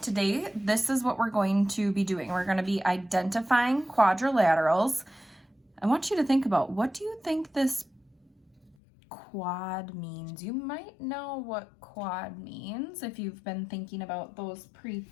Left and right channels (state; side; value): drops out; right; at 8.8 s